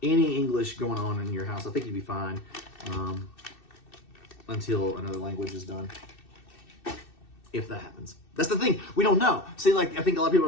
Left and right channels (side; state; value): right; late; 2.6 ms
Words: any English going on in your house, I think you'd be fine until another language is done. If that happens. That's the thing. We don't know. See, like, I think a lot of people